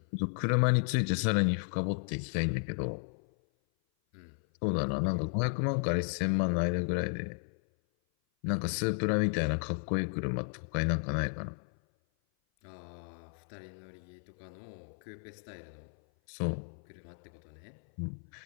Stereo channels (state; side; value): silent; right; 56 dB below the other